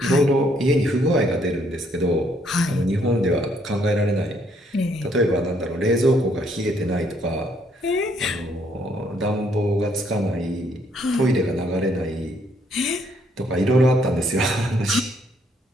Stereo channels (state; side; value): normal; both; correlation 0.69